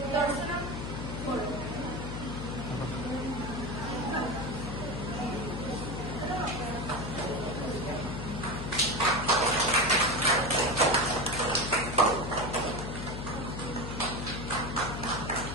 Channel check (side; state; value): left; noise; hum, 5 dB below the sound